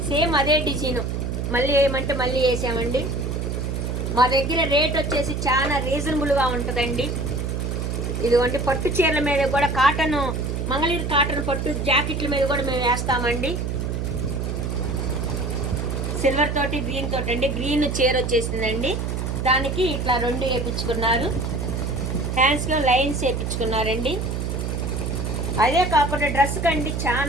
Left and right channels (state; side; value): noise; right; hum, 2 dB below the sound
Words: సేమ్ అదే డిజైన్ మళ్ళీ వేయమంటే మళ్ళీ వేసామండి. మా దగ్గర రేట్ వచ్చేసి చాలా రీజనబుల్గా ఉంటుందండి. ఇదిగోండి పట్టు చీరల మీద కూడా కాటన్, మంగళగిరి కాటన్ పట్టు జాకెట్ల మీద కూడా మేము వేస్తామండి. సిల్వర్ తోటి గ్రీన్ తోటి అండి. గ్రీన్ చీర వచ్చేసిందండి. దానికి ఇట్లా రెండు వేయించుకున్నారు. హ్యాండ్స్లో లైన్స్ వేయించుకున్నారండి. అదే కాకుండా డ్రెస్ కండి